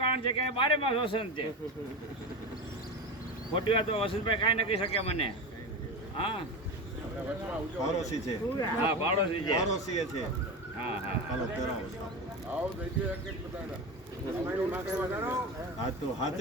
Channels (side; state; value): both; normal; correlation 0.22